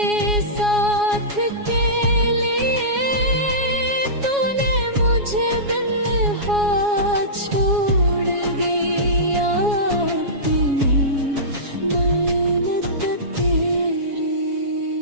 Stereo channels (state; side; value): late; left; 7.2 ms